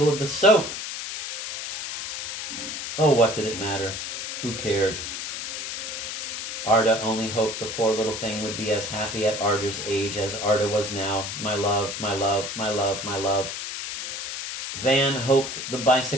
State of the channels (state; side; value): noise; left; hiss, 5 dB below the sound